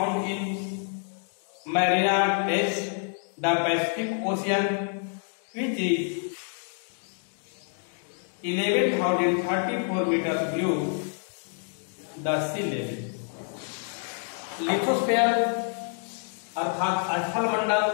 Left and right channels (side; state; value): right; silent; 60 dB below the other